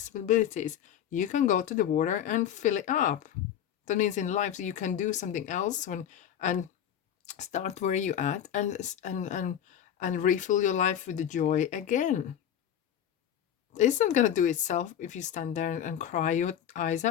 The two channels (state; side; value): quieter; right; 9.9 dB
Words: You can go to the water and fill it up. That means in life you can do something else and start where you at and refill your life with the joy again. It's not gonna do itself if you stand there and cry your eyes